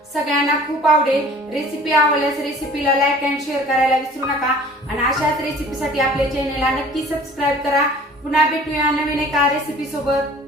सगळ्यांना खूप आवडेल। रेसिपी आवडल्यास रेसिपीला लाईक अँड शेअर करायला विसरू नका आणि अशाच रेसिपीसाठी आपल्या चॅनेलला नक्की सबस्क्राईब करा। पुन्हा भेटूया नवीन एका रेसिपी सोबत।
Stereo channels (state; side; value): normal; both; correlation 0.49